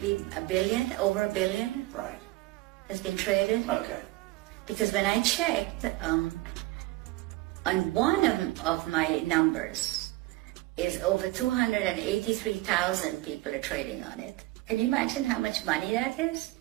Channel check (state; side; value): quieter; left; 19.5 dB